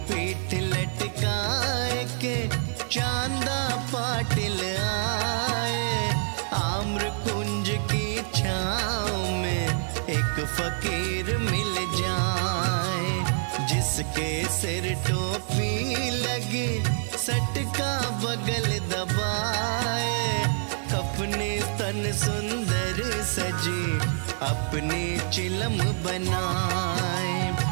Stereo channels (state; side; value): silent; left; digital silence